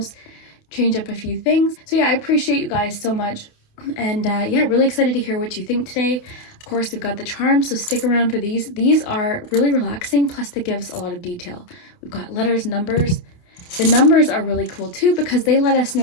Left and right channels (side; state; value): right; late; 28 ms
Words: change up a few things. So yeah, I appreciate you guys so much. And yeah, really excited to hear what you think today. Of course, we've got the charms, so stick around for these. These are really relaxing, plus they give us a lot of detail. We've got letters, numbers. The numbers are really cool too because they let us